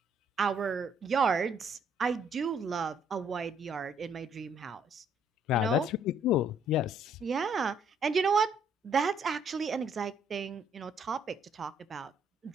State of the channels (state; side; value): normal; both; correlation 0.66